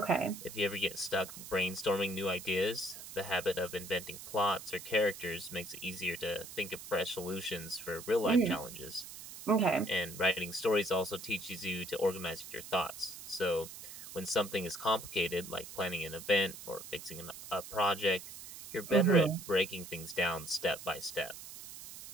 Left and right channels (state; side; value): noise; right; hiss, 13 dB below the sound